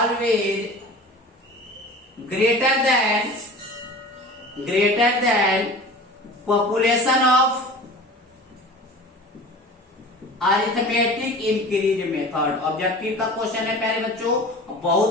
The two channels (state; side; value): normal; both; correlation 0.39